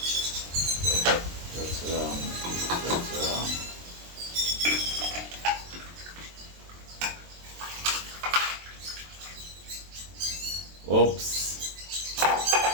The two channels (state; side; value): late; left; 23 ms